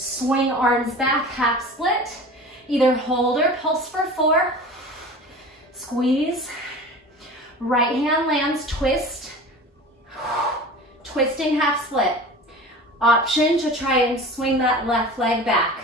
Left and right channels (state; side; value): normal; both; correlation 0.37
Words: arms back, half split. Either hold or pulse for 4. Squeeze. Right hand lands, twist. Twisting half split. Option to try and swing that left leg back.